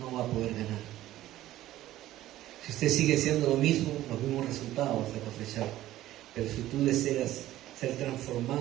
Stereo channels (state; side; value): quieter; left; 14.6 dB